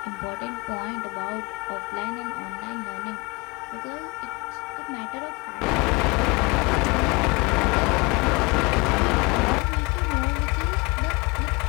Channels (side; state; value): right; quieter; 26.9 dB